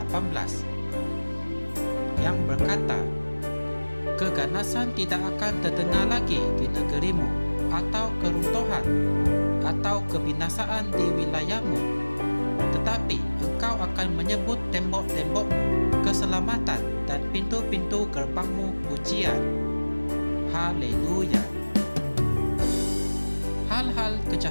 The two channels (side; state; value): both; inverted; correlation -1.00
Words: 18 yang berkata, keganasan tidak akan terdengar lagi di negerimu, atau keruntuhan atau kebinasaan di wilayahmu, tetapi engkau akan menyebut tembok-tembokmu keselamatan dan pintu-pintu gerbangmu pujian. Haleluya. Hal-hal